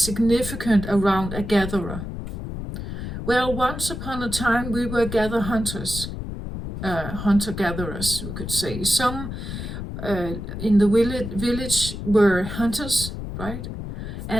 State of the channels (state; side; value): noise; left; rumble, 7 dB below the sound